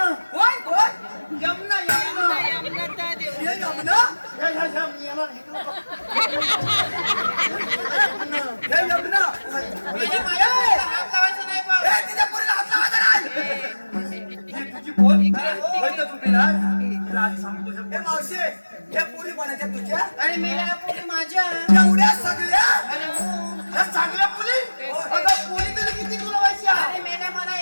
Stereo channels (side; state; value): both; inverted; correlation -1.00